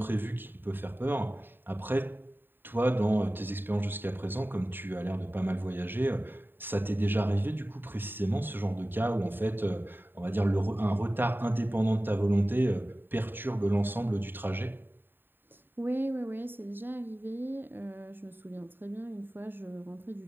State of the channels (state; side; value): late; left; 0.096 ms